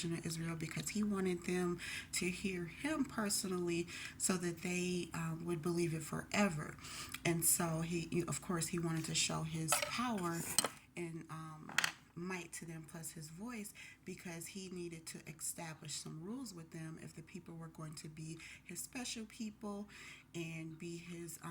of Israel because he wanted them to hear him personally so that they would believe it forever. And so of course, he wanted to show his power and might to them plus his voice because he needed to establish some rules with them if the people were going to be his special people and be his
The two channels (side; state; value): both; identical; correlation 1.00